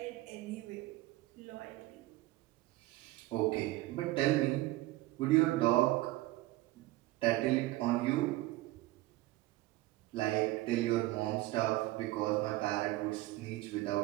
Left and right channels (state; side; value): quieter; left; 18.3 dB